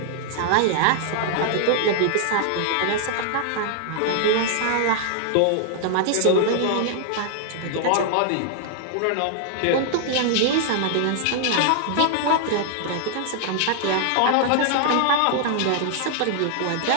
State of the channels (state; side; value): different; both; correlation 0.00